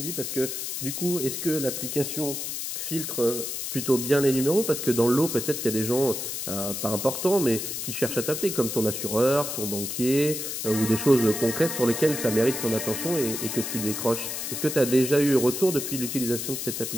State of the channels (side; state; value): left; noise; hiss, 4 dB below the sound